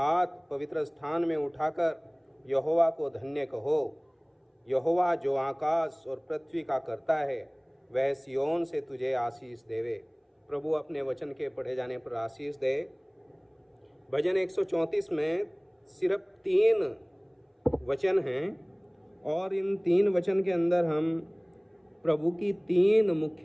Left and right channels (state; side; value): identical; both; correlation 1.00